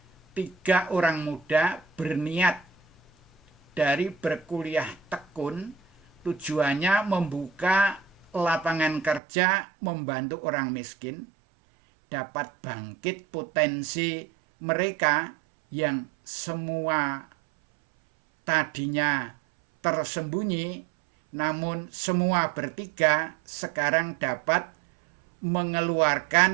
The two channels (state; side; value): drops out; left; at 9.2 s